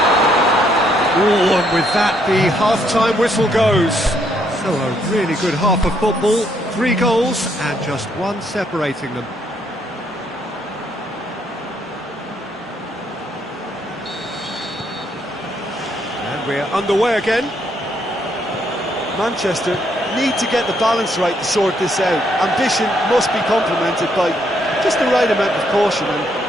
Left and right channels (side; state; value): both; normal; correlation 0.72